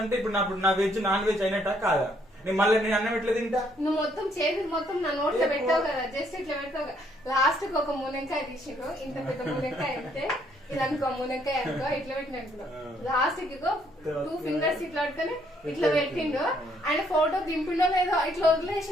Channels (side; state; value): both; normal; correlation 0.68